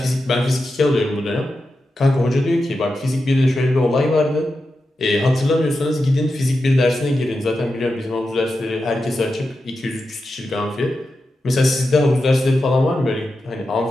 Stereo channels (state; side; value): normal; both; correlation 0.90